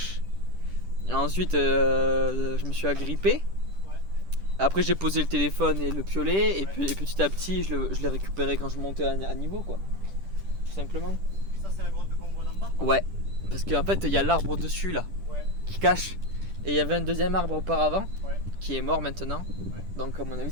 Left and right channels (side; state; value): left; late; 10 ms